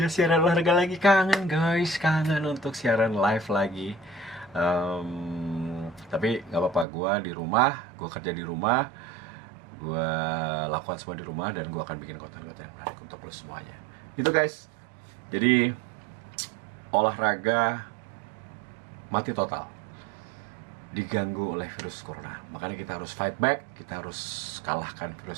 siaran olahraga lagi. Kangen guys, kangen untuk siaran live lagi. Tapi nggak apa-apa, gue di rumah, gue kerja di rumah, gue lakukan semua di rumah, dan gue akan bikin konten-konten yang menarik untuk lo semuanya. Gitu guys. Jadi olahraga mati total, diganggu oleh virus corona. Makanya kita harus fight back, kita harus kalahkan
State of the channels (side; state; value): left; drops out; at 6.9 s